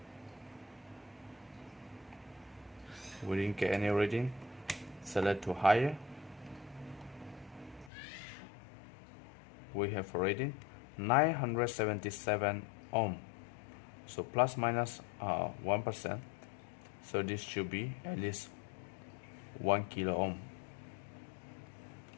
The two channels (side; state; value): right; drops out; at 7.9 s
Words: We didn't get any reading. Select to higher. We have a reading 977 ohm. So plus minus 1%. So this should be at least 1 kilo ohm.